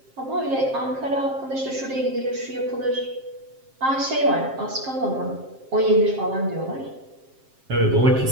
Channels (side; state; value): left; late; 7.5 ms